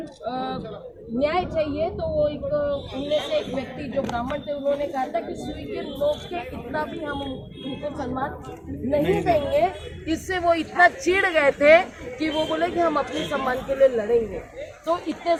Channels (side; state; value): both; identical; correlation 1.00